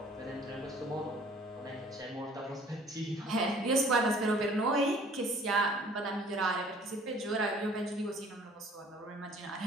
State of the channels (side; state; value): both; normal; correlation 0.53